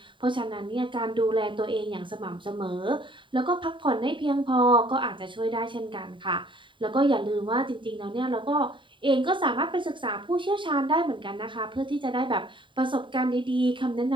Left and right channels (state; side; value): late; left; 0.24 ms